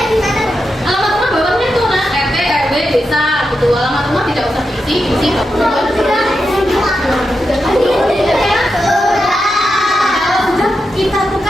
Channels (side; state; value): both; normal; correlation 0.87